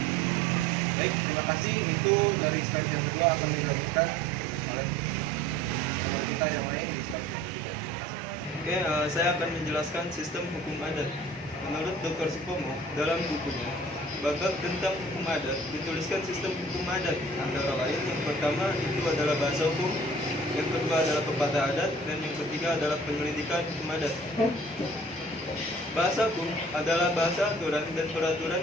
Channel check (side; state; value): both; normal; correlation 0.48